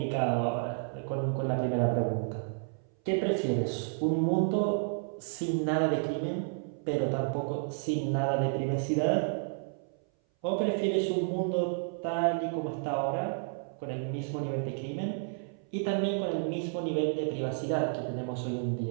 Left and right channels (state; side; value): silent; left; 57 dB below the other